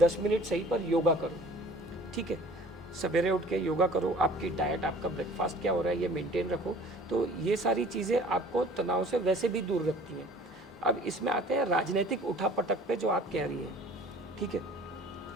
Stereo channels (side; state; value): both; normal; correlation 0.48